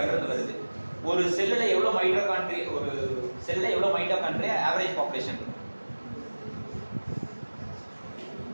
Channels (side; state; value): both; inverted; correlation -1.00